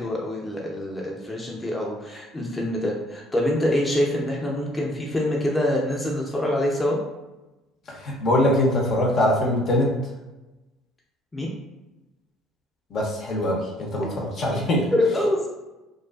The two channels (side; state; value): both; normal; correlation 0.62